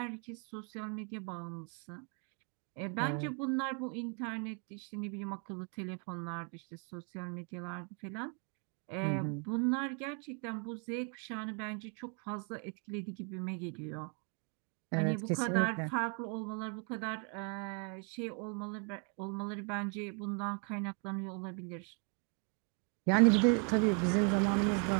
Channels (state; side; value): quieter; left; 39.3 dB